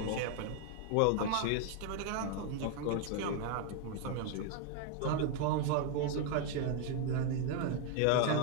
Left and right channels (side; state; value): both; different; correlation 0.00